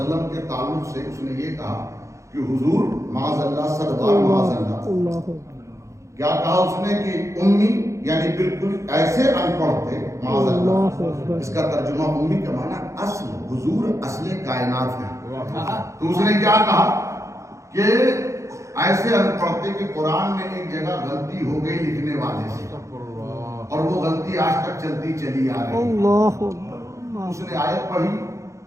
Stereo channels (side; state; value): left; late; 0.15 ms